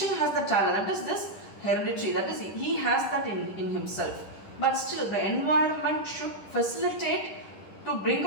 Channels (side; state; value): right; late; 10 ms